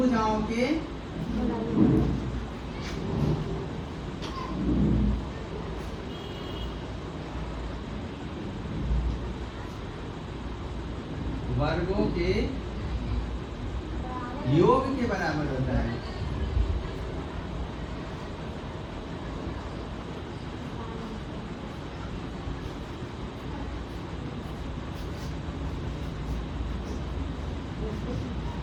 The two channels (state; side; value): identical; both; correlation 1.00